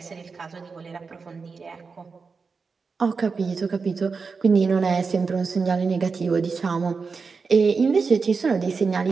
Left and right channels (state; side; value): quieter; left; 4.9 dB